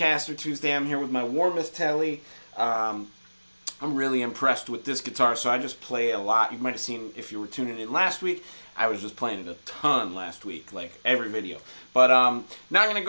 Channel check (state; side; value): inverted; both; correlation -1.00